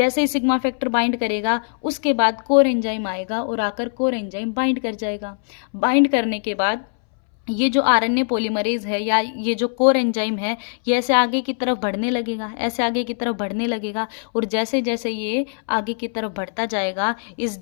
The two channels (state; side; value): silent; right; 62 dB below the other